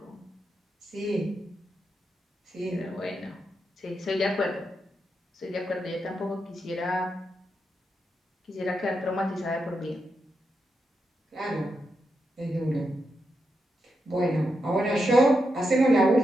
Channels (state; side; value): normal; both; correlation 0.85